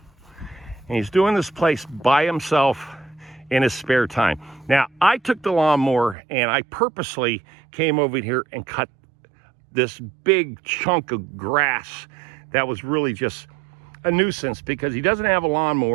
And he's doing this place by himself in his spare time. Now, I took the lawnmower and I purposely came over here and cut this big chunk of grass that was really just a nuisance because he doesn't have a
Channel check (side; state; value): left; drops out; at 6.2 s